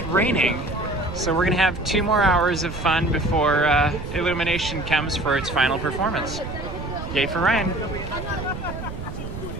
raining. So we're gonna have 2 more hours of fun before Illumination comes for its final performance. Yay for Ryan.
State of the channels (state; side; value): noise; right; rumble, 9 dB below the sound